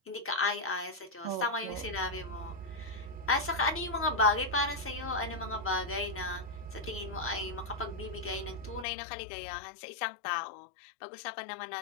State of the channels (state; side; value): drops out; right; at 8.8 s